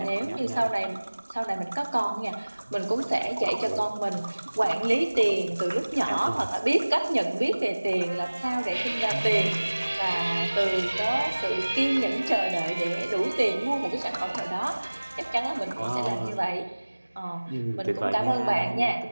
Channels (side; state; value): both; inverted; correlation -1.00